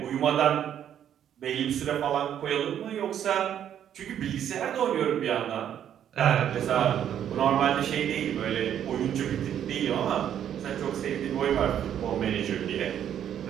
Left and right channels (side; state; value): left; quieter; 9.8 dB